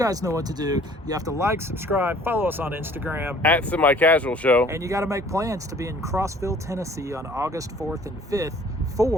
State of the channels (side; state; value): both; normal; correlation 0.53